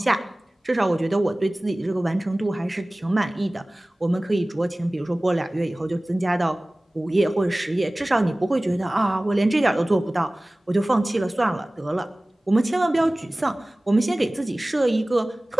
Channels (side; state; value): both; normal; correlation 0.98